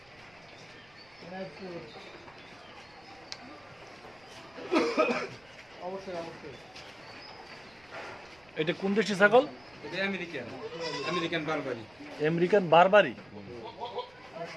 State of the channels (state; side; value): noise; right; rumble, 30 dB below the sound